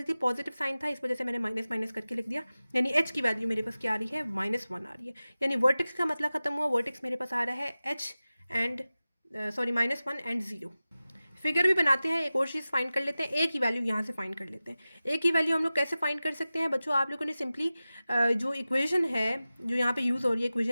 थी, पॉजिटिव साइन था, इस वजह से मैंने माइनस माइनस करके लिख दिया। यानी h की वैल्यू मेरे पास क्या आ रही है -1 आ रही है। यानी वर्टेक्स का मतलब खत्म हुआ, वर्टेक्स मेरे पास आ रहा है h एंड -1 एंड 0। फिगर भी बनाते हैं, एक और चीज़ फाइंड कर लेते हैं, ए की वैल्यू यहाँ से फाइंड कर लेते हैं। ए की वैल्यू हम लोग कैसे फाइंड कर सकते हैं बच्चों, आप लोगों ने सिंपली जो इक्वेशन है जो यहाँ पे यूज़ हो रही है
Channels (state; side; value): inverted; both; correlation -0.96